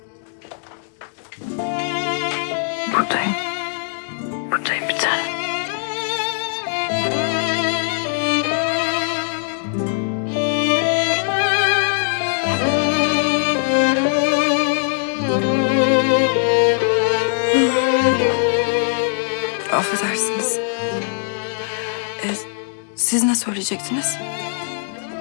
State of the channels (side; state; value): right; silent; digital silence